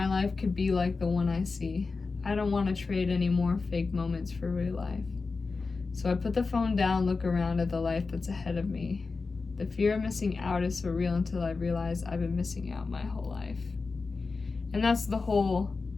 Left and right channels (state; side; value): quieter; right; 4.2 dB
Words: life could be like the one I see. I don't want to trade any more fake moments for real life. So I put the phone down, look around at the life that's ahead of me. The fear of missing out is so real until I realize I've been missing out my whole life. And that's the whole